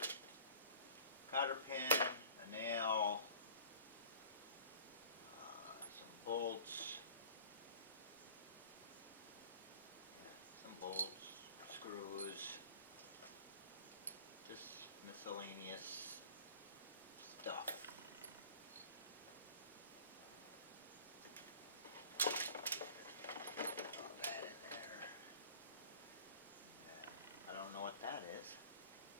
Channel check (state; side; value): inverted; both; correlation -0.47